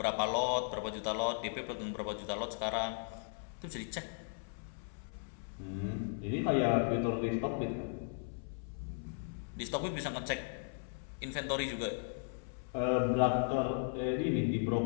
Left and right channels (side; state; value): right; silent; 53 dB below the other